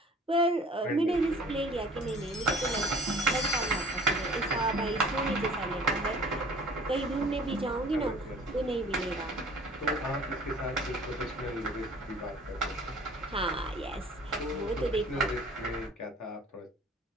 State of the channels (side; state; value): both; normal; correlation 0.49